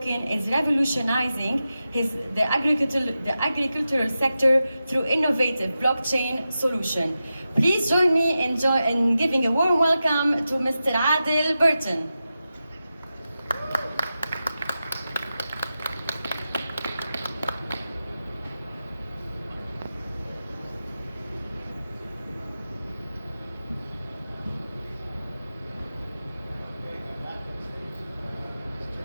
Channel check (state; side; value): inverted; both; correlation -0.92